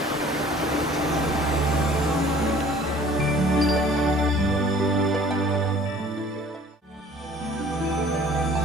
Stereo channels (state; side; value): normal; both; correlation 0.51